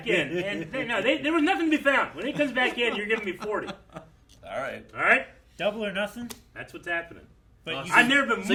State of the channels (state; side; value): identical; both; correlation 1.00